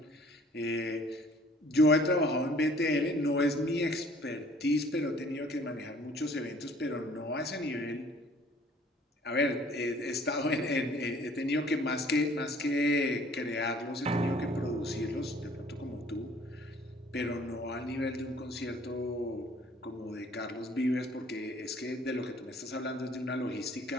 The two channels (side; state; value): both; normal; correlation 0.55